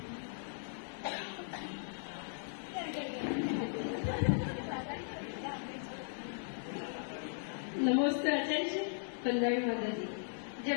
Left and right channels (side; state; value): right; silent; digital silence